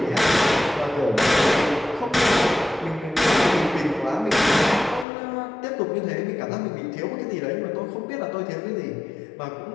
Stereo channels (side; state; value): right; drops out; at 5.1 s